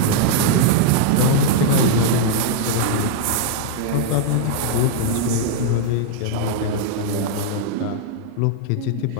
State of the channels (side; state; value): both; different; correlation -0.01